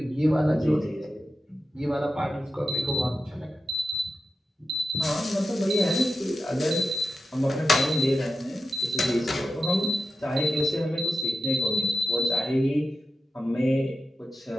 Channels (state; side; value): normal; both; correlation 0.91